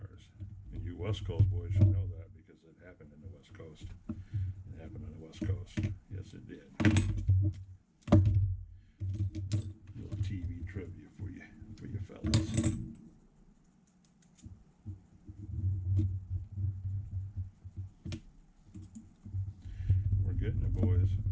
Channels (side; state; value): both; identical; correlation 1.00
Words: And you West Coast boys should know that because it happened in the West Coast. It happened on the West Coast. Yes, it did. Little TV trivia for you fellas. We're getting it, boys.